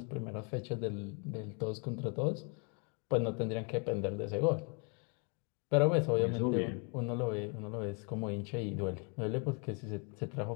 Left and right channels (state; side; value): quieter; right; 36.4 dB